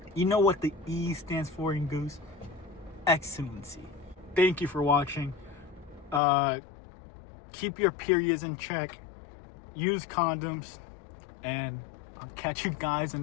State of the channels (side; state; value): right; drops out; at 6.2 s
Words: You know what the E stands for in goose? Excellency. Thank you for watching. Keep your periods in check. Use condoms. And I'll catch you guys in